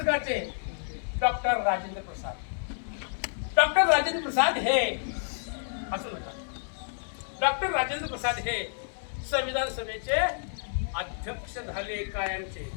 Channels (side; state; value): right; silent; digital silence